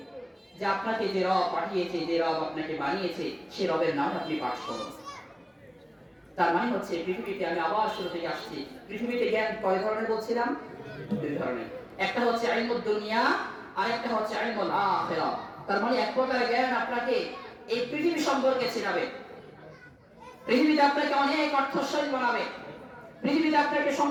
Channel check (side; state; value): both; identical; correlation 1.00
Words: যে আপনাকে যে রব পাঠিয়েছে, যে রব আপনাকে বানিয়েছে সেই রবের নাম আপনি পাঠ করুন। তার মানে হচ্ছে পৃথিবীতে, আমি আবার শুরু থেকে আসছি, পৃথিবীতে জ্ঞান কয় ধরনের বলছিলাম? দুই ধরনের। একটা হচ্ছে ইলমুদ দুনিয়া আর একটা হচ্ছে ইলমুল আখিরাহ। তার মানে এক প্রকার জ্ঞান আপনাকে এই পৃথিবী সম্পর্কে শেখাবে, পৃথিবীতে আপনাকে অনেক অর্থশালী বানাবে, পৃথিবীতে আপনাকে